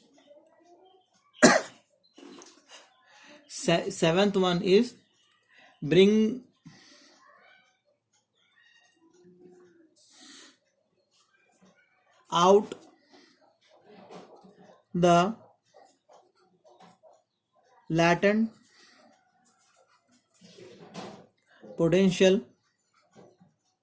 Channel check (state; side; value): identical; both; correlation 1.00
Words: Seventh one is bring out the latent potentials